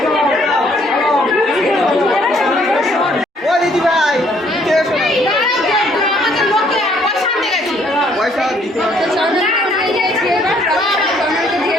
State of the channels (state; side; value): normal; both; correlation 0.64